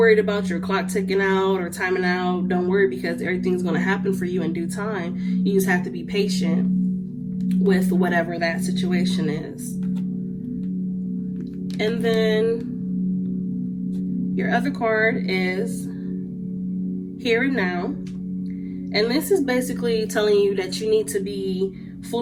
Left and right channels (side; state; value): both; identical; correlation 1.00